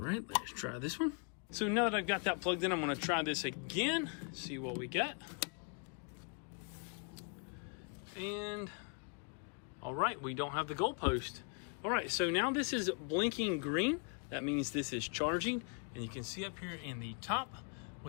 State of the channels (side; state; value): right; quieter; 39.1 dB